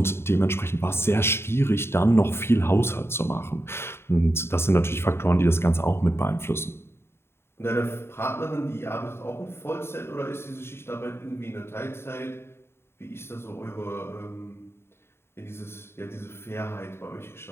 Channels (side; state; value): right; late; 0.12 ms